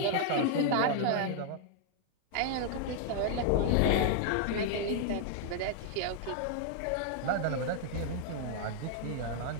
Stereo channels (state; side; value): different; both; correlation 0.00